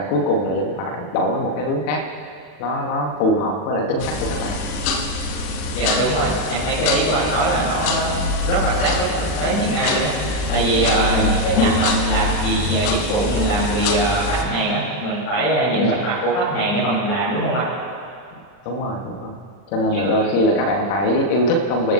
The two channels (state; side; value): late; right; 40 ms